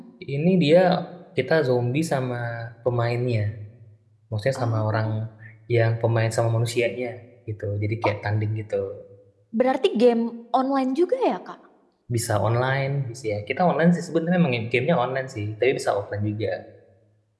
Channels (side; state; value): both; identical; correlation 1.00